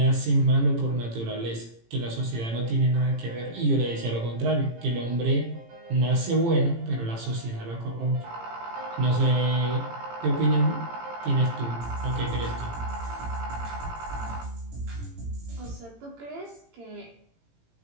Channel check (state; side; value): late; left; 18 ms